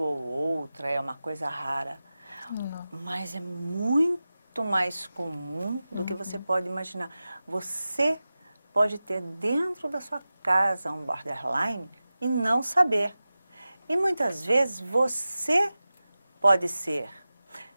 ou outra, é uma coisa rara. Não. Mas é muito mais comum do que você pode imaginar. Você pode ter dentro da sua casa um borderline e não saber. E muitas vezes você pode ser.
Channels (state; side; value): inverted; both; correlation -0.95